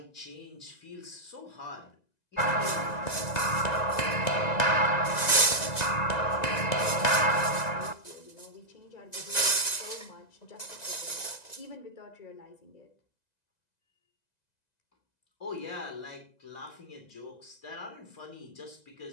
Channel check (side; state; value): right; late; 1.9 ms